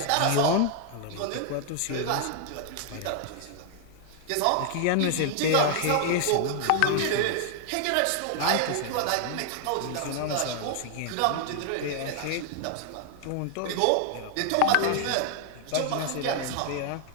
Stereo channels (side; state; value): both; different; correlation 0.00